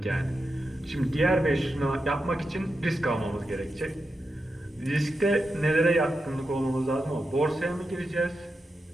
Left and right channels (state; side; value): normal; both; correlation 0.88